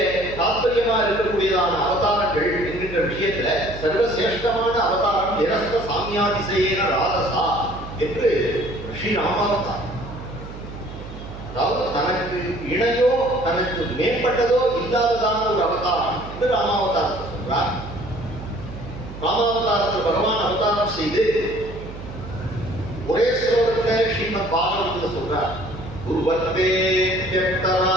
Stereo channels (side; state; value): right; noise; hum, 12 dB below the sound